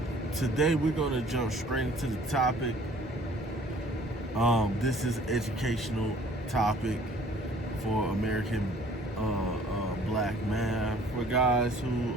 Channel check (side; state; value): both; normal; correlation 0.54